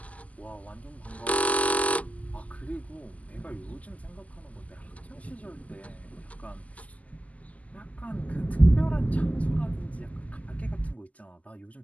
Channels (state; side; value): late; right; 0.072 ms